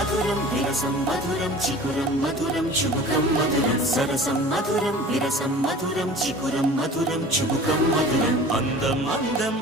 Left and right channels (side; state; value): both; normal; correlation 0.42